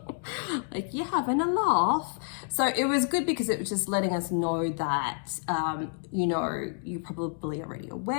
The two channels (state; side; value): silent; right; 59 dB below the other